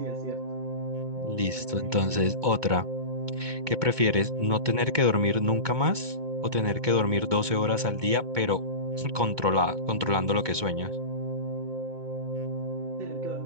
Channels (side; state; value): left; late; 2.2 ms